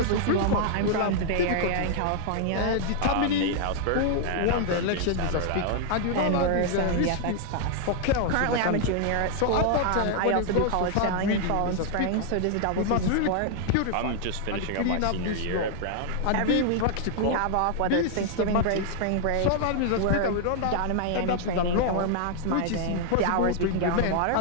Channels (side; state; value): both; different; correlation -0.01